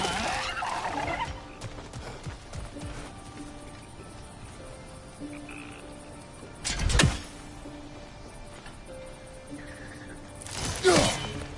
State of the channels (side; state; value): both; identical; correlation 1.00